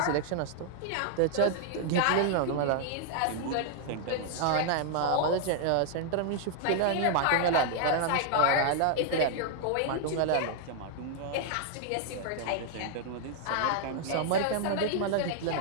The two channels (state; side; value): different; both; correlation 0.00